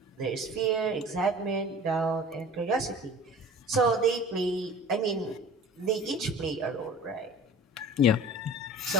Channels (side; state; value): both; normal; correlation 0.42